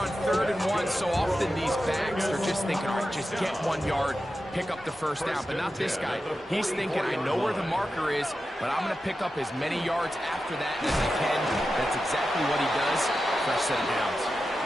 3rd and 1. So often these backs are just thinking, all right, just get 1 yard, pick up the first down. But not this guy. He's thinking, I know where the marker is, but I'm going to pick up as many yards after that as I can. That's exactly what he does. Fresh set of downs.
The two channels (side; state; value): both; normal; correlation 0.91